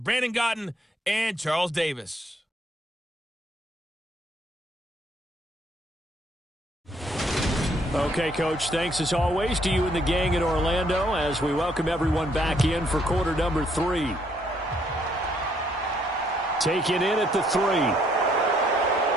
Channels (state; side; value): normal; both; correlation 0.68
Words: Brandon Gotten and Charles Davis. Okay, Coach, thanks as always to you and the gang in Orlando as we welcome everyone back in for quarter number 3. Taken in at the 3.